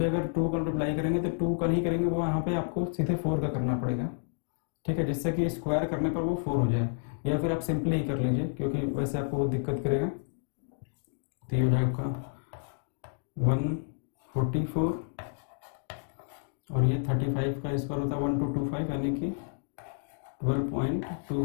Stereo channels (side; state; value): right; silent; digital silence